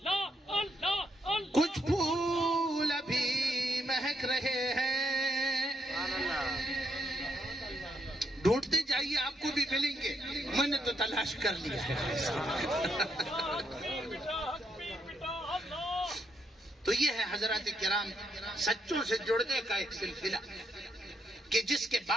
کچھ پھول ابھی مہک رہے ہیں، ڈھونڈتے جائیے آپ کو بھی ملیں گے، میں نے تو تلاش کر لیا ہے۔ تو یہ ہے حضرات کرام سچوں سے جڑنے کا ایک سلسلہ کہ جس کے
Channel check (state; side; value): normal; both; correlation 0.78